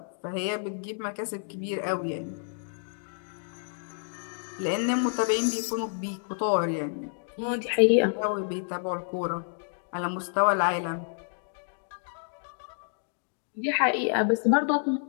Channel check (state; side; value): silent; right; digital silence